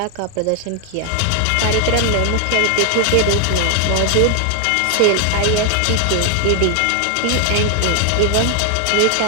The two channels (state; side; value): different; both; correlation 0.00